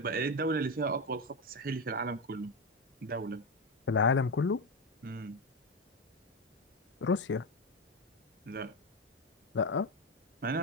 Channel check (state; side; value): normal; both; correlation 0.12